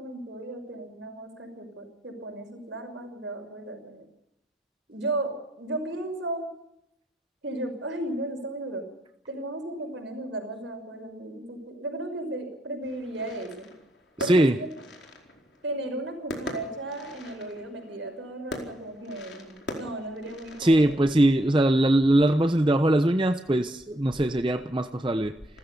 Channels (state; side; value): normal; both; correlation 0.75